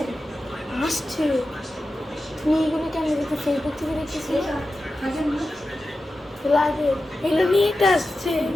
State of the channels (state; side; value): normal; both; correlation 0.92